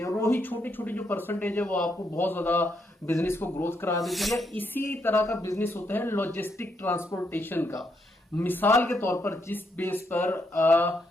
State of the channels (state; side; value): normal; both; correlation 0.77